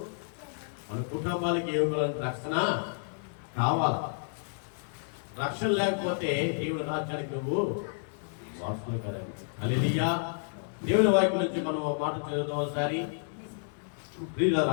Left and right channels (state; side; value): silent; right; digital silence